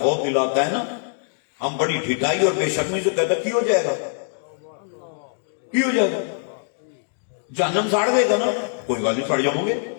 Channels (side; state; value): right; silent; digital silence